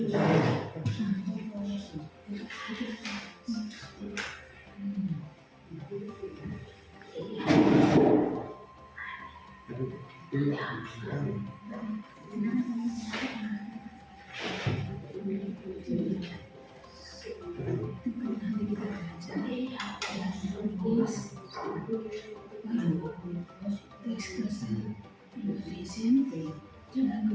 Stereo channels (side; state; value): both; identical; correlation 1.00